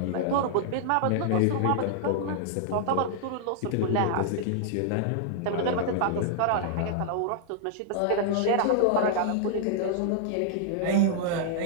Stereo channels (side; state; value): both; different; correlation -0.01